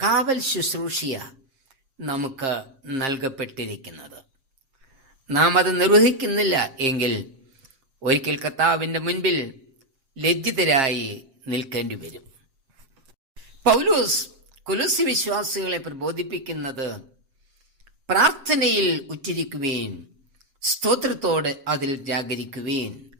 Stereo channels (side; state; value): left; late; 7.5 ms